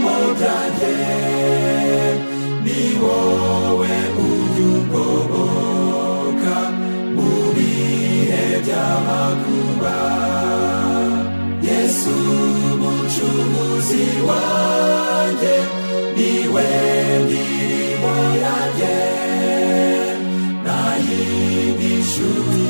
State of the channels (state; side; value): inverted; both; correlation -1.00